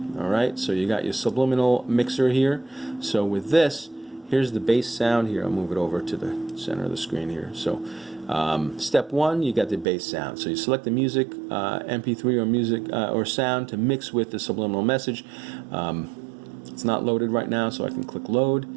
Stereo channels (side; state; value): left; drops out; at 9.9 s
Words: All right, so you got your subliminal mixer here. So with this, here's the bass sound here. I'll move it over to the center of the screen here. So step one, you got the bass sound. So you select the music, MP3 or music or sound to mix with the subliminal message. It's not loaded right now, so I can click load.